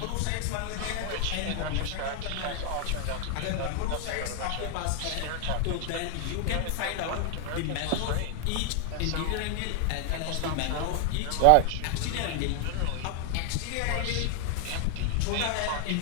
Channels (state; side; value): different; both; correlation 0.00